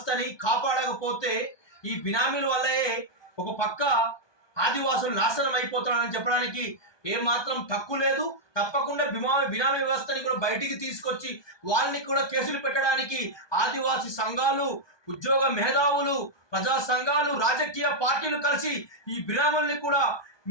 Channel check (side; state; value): right; late; 1.2 ms